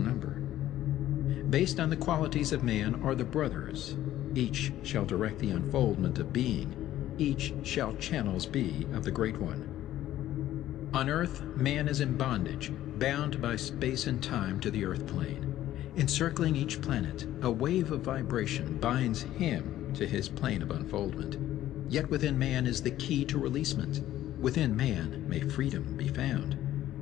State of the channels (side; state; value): right; quieter; 13.4 dB